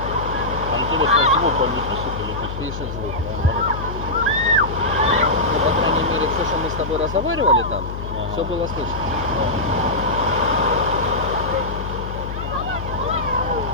Интересно, звук он не пишет или пишет? Пишет звук. Да, Ну, по крайней мере, все, что мы с тобой разговаривали там, Ага. все было слышно.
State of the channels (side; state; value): left; noise; hum, 7 dB below the sound